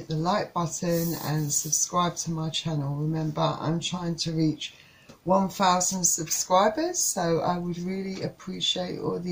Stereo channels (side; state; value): both; identical; correlation 1.00